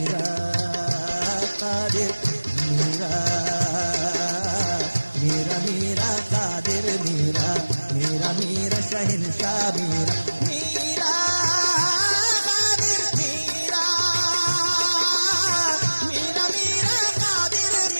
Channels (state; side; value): inverted; both; correlation -1.00